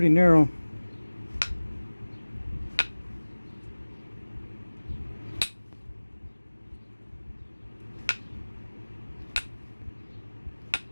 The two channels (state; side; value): inverted; both; correlation -1.00